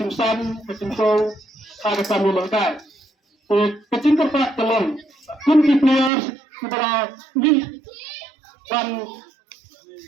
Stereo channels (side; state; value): left; drops out; at 6.1 s